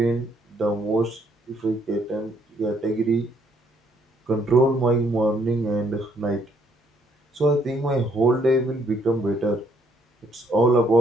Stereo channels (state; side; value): normal; both; correlation 0.68